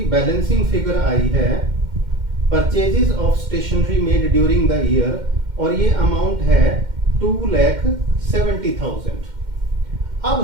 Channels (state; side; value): late; left; 2.1 ms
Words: बैलेंसिंग फिगर आई है purchases of stationery made during the year, और ये अमाउंट है 2,70,000। अब